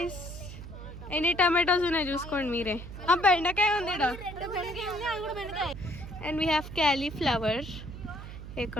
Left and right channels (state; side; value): noise; right; hum, 11 dB below the sound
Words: ఎన్ని టమాటోస్ ఉన్నాయి చూసుకోండి మీరే. బెండకాయ ఉంది. And we have cauliflower.